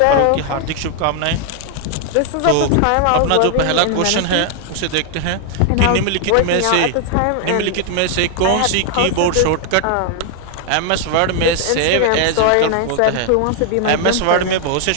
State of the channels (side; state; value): both; different; correlation 0.00